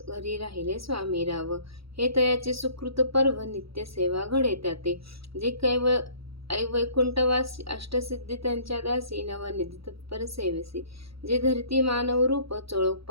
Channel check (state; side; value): late; left; 0.76 ms